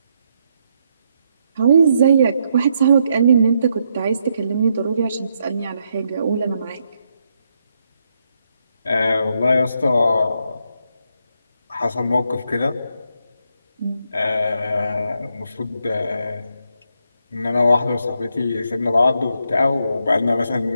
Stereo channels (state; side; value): inverted; both; correlation -0.78